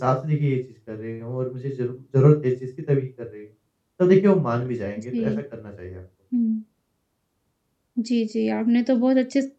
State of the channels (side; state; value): both; identical; correlation 1.00